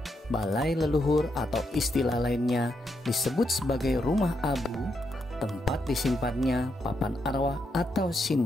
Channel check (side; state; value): both; normal; correlation 0.81